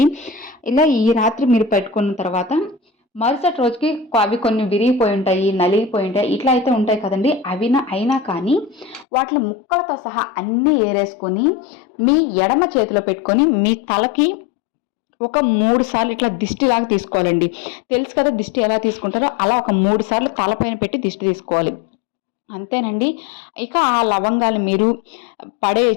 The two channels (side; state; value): right; drops out; at 9.1 s